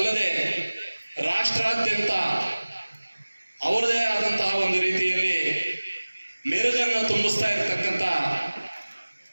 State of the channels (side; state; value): both; inverted; correlation -1.00